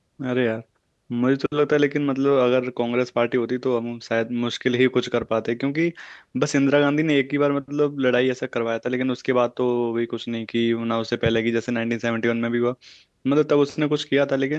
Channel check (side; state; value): both; identical; correlation 1.00